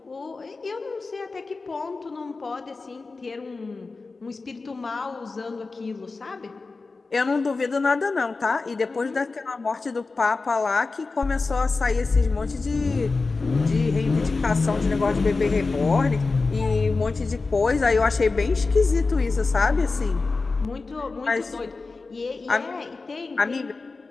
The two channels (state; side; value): quieter; right; 3.9 dB